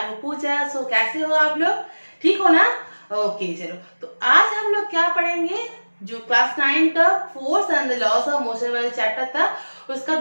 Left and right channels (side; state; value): both; inverted; correlation -1.00